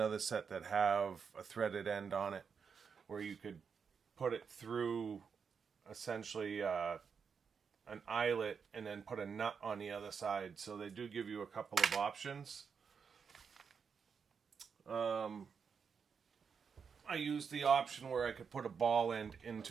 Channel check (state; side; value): quieter; left; 6.2 dB